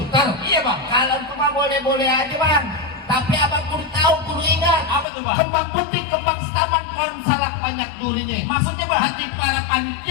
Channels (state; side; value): drops out; right; at 5.1 s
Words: Iya bang. Kalau itu mah boleh-boleh aja bang. Tapi abang kudu tahu, kudu ingat. Apa tuh bang? Kembang putih, kembang setaman, salak banyak durinya. Maksudnya bang? Nanti para